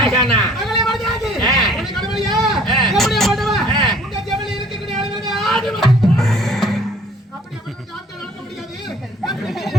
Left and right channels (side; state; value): both; normal; correlation 0.54